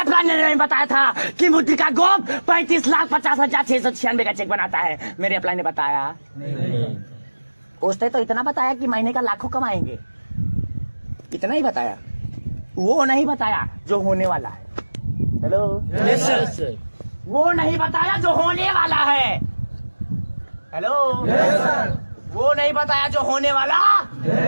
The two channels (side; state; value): both; inverted; correlation -1.00